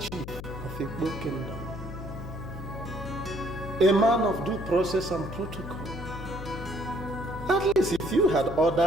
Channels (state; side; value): noise; left; hum, 9 dB below the sound